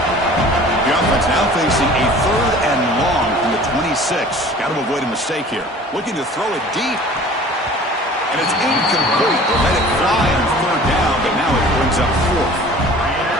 The offense now facing a 3rd and long from the 26. Got to avoid a mistake here. Looking to throw it deep. And it's incomplete. They'll let it fly on 3rd down, but now it brings up 4th.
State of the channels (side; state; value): both; normal; correlation 0.46